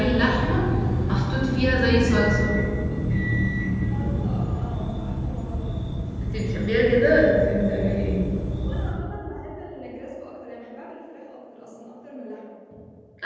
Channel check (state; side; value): identical; both; correlation 1.00